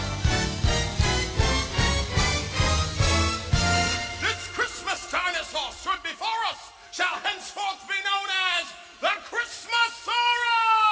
Shall henceforth be known as the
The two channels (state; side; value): identical; both; correlation 1.00